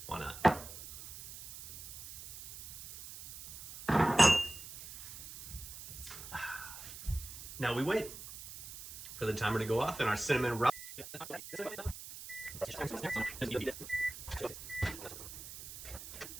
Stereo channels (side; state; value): right; noise; hiss, 12 dB below the sound